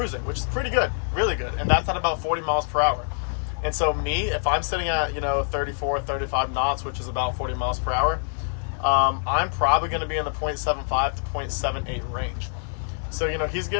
which is pretty good, really good. And that's at about 40 miles per hour. And so if I'm sitting at, 34, 35 knots, which is about 40 miles per hour, I'm probably going to be in the 0.75 to 0.78 range. So, he's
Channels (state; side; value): silent; right; 56 dB below the other